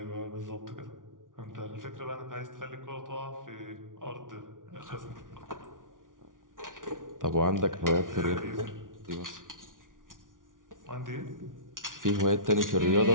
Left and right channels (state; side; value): late; left; 0.88 ms